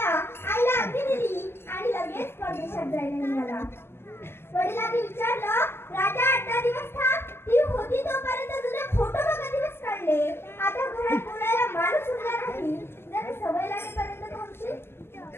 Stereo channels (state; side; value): late; right; 0.12 ms